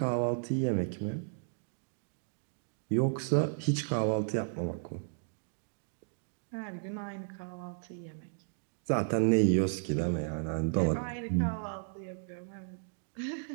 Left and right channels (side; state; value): left; silent; digital silence